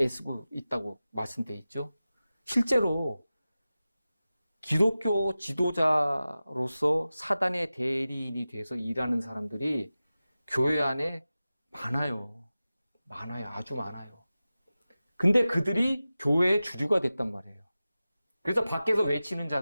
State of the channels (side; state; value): both; inverted; correlation -0.96